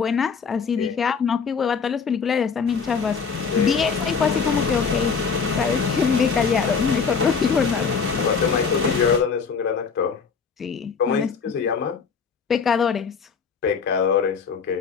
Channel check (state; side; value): quieter; right; 5.8 dB